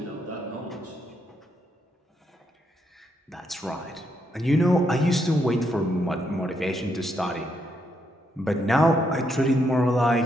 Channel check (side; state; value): both; normal; correlation 0.77